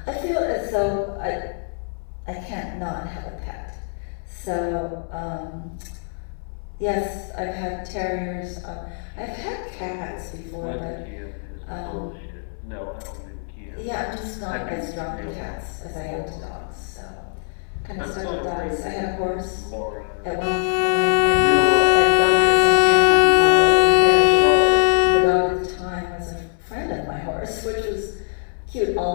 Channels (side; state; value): right; silent; 64 dB below the other